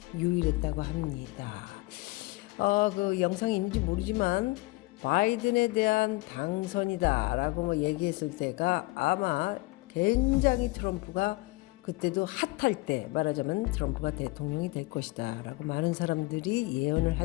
유일했다고 합니다. 그 영상이 있는지 모르지만 바이든에 대한 당선이다라고 얘기했을 때가 아마 굉장히 트럼프가 그때도 핫할 때, 말하자면 트럼프가 대통령이 될 것이다 라고 많은 사람들이 예언을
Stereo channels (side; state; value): right; quieter; 23.0 dB